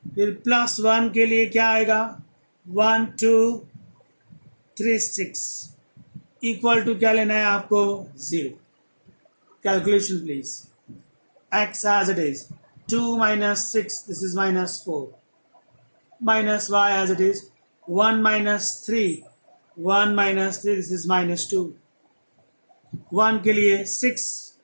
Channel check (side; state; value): both; inverted; correlation -1.00